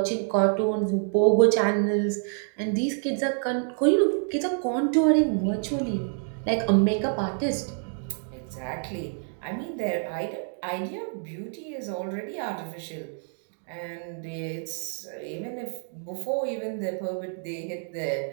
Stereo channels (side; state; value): left; silent; 56 dB below the other